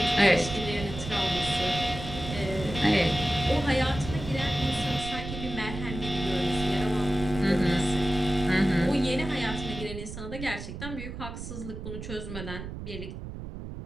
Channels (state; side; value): noise; right; rumble, 9 dB below the sound